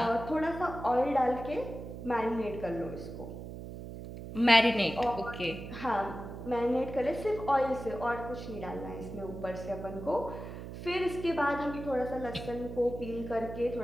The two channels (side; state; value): right; noise; hum, 10 dB below the sound